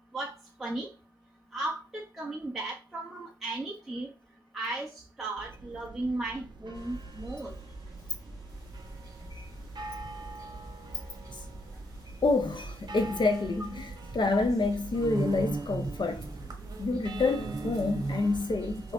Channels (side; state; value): both; normal; correlation 0.76